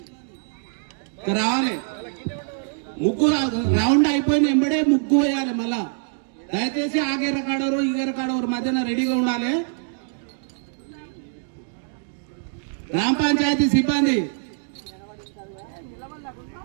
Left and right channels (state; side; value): silent; left; 63 dB below the other